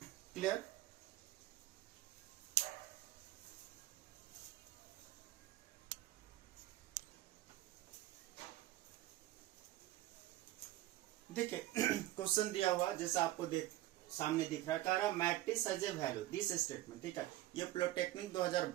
clear? देखिए क्वेश्चन दिया हुआ जैसा आपको सामने दिख रहा है, कह रहा matrix has a value this statement. ठीक है, ये पॉलिटेक्निक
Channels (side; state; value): left; quieter; 15.7 dB